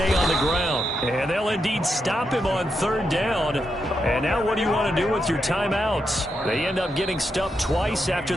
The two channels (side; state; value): both; normal; correlation 0.84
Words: on the ground, and they'll indeed stop him on 3rd down. And now what do you want to do with your timeouts? They end up getting stuffed twice after